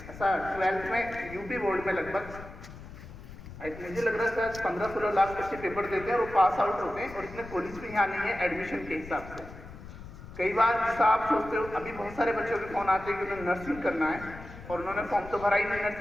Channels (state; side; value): noise; left; rumble, 15 dB below the sound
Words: ऐसा 12th में यूपी बोर्ड में लगभग मुझे लग रहा है 15-16 लाख बच्चे पेपर देते हैं और वो पास आउट होते हैं, और इसमें कॉलेज भी यहाँ नहीं है एडमिशन के हिसाब से। कई बार जैसा आप सोचते हो, अभी बहुत सारे बच्चों के फोन आते हैं कि उन्हें नर्सिंग करना है और उन्होंने फॉर्म तो भरा ही नहीं